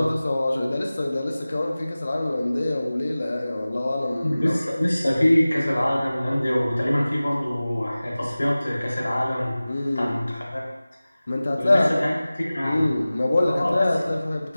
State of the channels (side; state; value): both; inverted; correlation -0.97